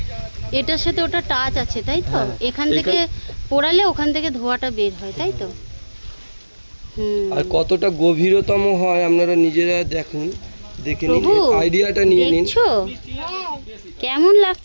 এটার সাথে ওটা টাচ আছে তাই তো? এখান থেকে পোড়ালে ওখান থেকে ধোঁয়াটা বের হয় তাই তো? আর কতটা গভীরতম হয় আপনারা নিজেরা দেখুন, দেখে নিন, আইডিয়াটা নিয়ে নিন। দেখছো কেমন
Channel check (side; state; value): both; inverted; correlation -1.00